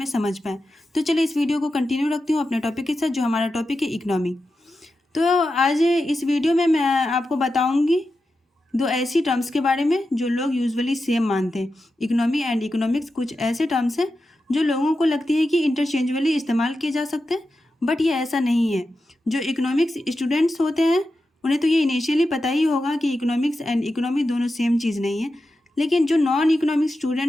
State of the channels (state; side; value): normal; both; correlation 0.90